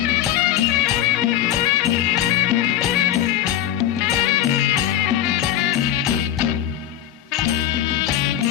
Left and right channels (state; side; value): quieter; right; 11.5 dB